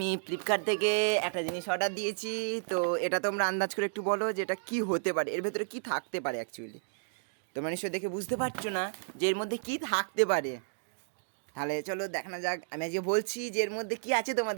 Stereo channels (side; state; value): left; silent; digital silence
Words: ফ্লিপকার্ট থেকে একটা জিনিস অর্ডার দিয়েছি। তো এটা তোমরা আন্দাজ করে একটু বলো যে এটা কী হতে পারে, এর ভেতরে কী থাকতে পারে। অ্যাকচুয়ালি তোমরা নিশ্চয়ই দেখে বুঝতে পারছো না যে এর মধ্যে কী থাকতে পারে। তাহলে চলো দেখানো যাক। আমি আজকে বলছি যে এর মধ্যে কী আছে,